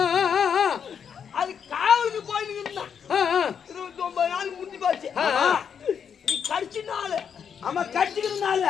அது காவலுக்கு போயிட்டு 29 நாள் முடிஞ்சு போச்சு நீ கடிச்சு நாள் ஆமா கடிச்சுக்கிறதுனால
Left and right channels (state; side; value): quieter; right; 7.4 dB